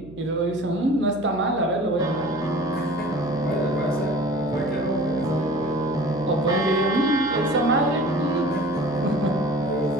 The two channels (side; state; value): right; noise; hum, 19 dB below the sound